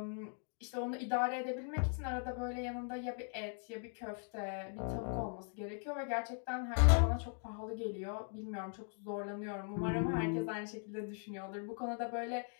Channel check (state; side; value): silent; right; 51 dB below the other